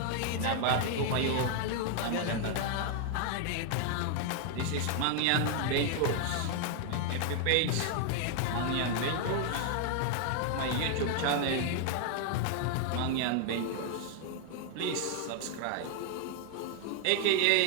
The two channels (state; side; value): different; both; correlation 0.00